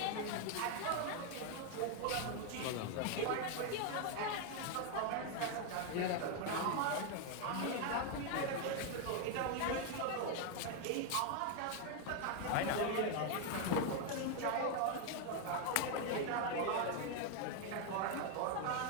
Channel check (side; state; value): both; different; correlation 0.01